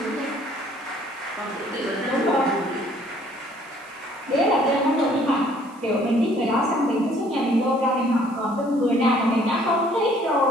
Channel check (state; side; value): noise; right; hiss, 27 dB below the sound